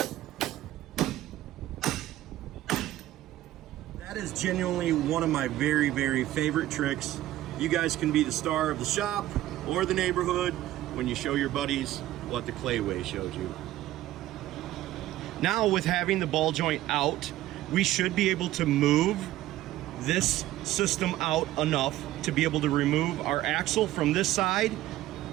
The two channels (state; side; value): quieter; left; 14.8 dB